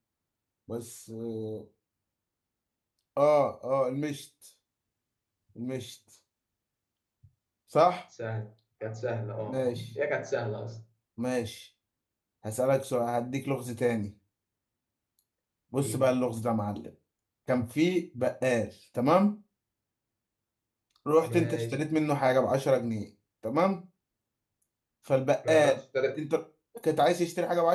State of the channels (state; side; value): identical; both; correlation 1.00